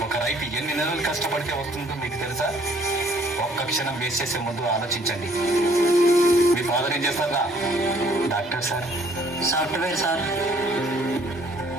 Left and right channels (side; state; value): both; normal; correlation 0.60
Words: ఒక రైతు ఎన్ని నెలలు కష్టపడితే వస్తుందో మీకు తెలుసా? ఒక్క క్షణం వేస్ట్ చేసే ముందు ఆలోచించండి. మీ ఫాదర్ ఏం చేస్తారా? Doctor sir. Software sir.